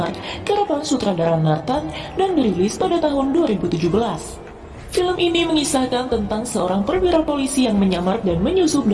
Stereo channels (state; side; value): identical; both; correlation 1.00